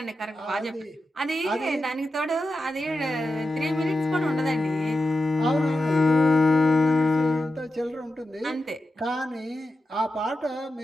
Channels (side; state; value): both; normal; correlation 0.90